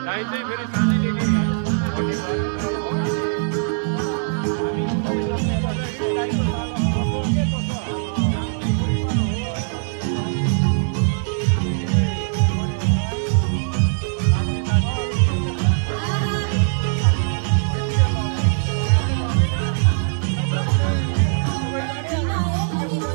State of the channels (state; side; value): silent; left; 65 dB below the other